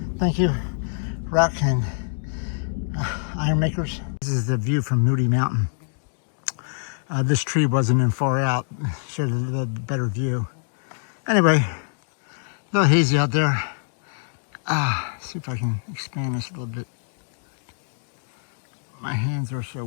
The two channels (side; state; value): right; silent; digital silence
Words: Thank you, rock and iron makers. This is the view from Moody Mountain. This tree wasn't in far out, showed a little better view. Anyway, a little hazy out there. See if I can expand this a little bit. My hands are so